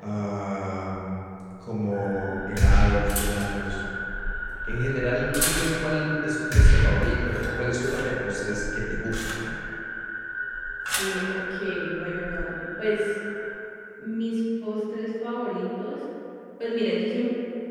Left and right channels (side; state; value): both; identical; correlation 1.00